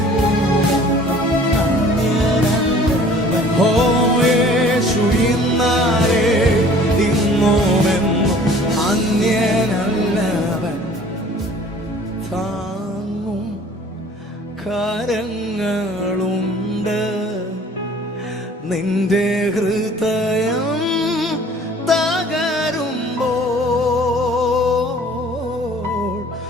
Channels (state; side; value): normal; both; correlation 0.51